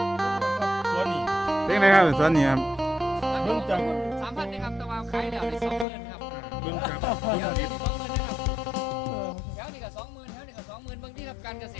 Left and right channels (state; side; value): drops out; right; at 5.9 s